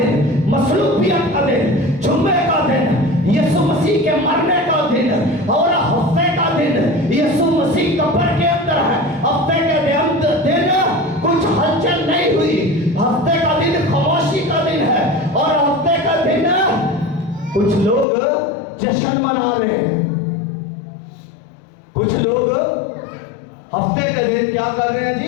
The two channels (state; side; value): drops out; right; at 18.1 s